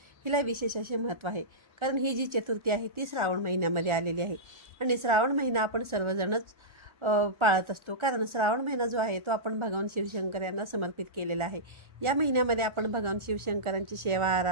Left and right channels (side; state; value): left; late; 1.4 ms